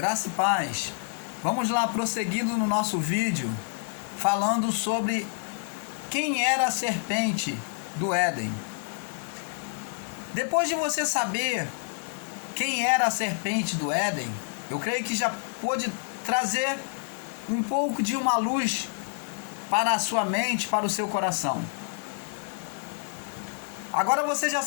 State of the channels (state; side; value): silent; right; 59 dB below the other